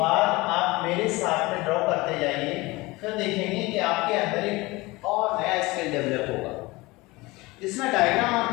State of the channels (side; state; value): right; quieter; 22.0 dB